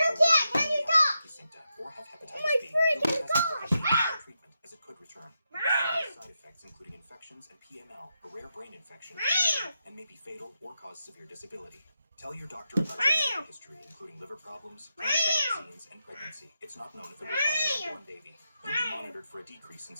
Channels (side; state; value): both; inverted; correlation -0.85